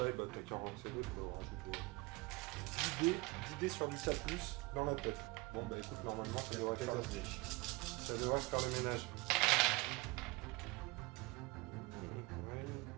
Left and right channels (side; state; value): left; quieter; 23.6 dB